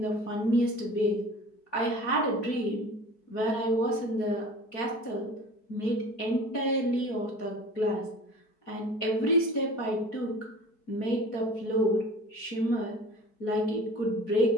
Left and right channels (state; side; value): late; right; 4.6 ms